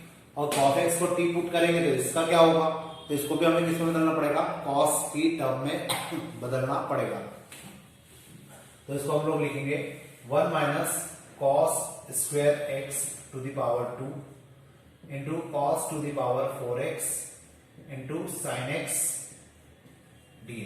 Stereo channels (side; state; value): both; identical; correlation 1.00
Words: और कॉस एक्स को टी पुट करेंगे तो इसका क्या होगा, तो इसको भी हमें किसमें बदलना पड़ेगा, कॉस की टर्म में बदलना पड़ेगा। तो इसको हम लोग लिखेंगे 1 minus cos square x to the power 2 into cos to the power 4x into sine x